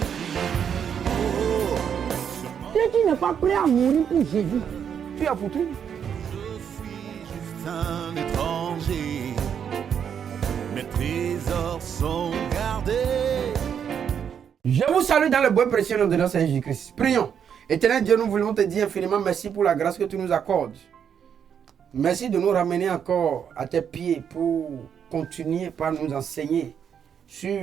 Oh, Si tu n'es pas prêt à mourir pour Jésus, tu as foutu. je suis juste un étranger. Mes trésors sont gardés. Je vous salue dans le beau précieux nom de notre Seigneur Jésus-Christ. Prions. Éternel Dieu, nous voulons te dire infiniment merci pour la grâce que tu nous accordes. Merci de nous ramener encore à tes pieds pour continuer par nous enseigner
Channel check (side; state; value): left; quieter; 8.0 dB